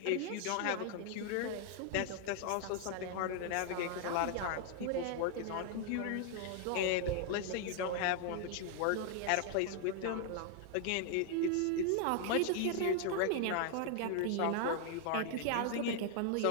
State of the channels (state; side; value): different; both; correlation 0.00